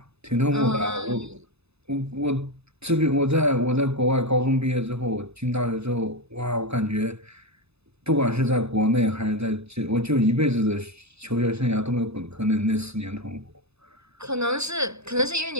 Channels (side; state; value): left; late; 0.79 ms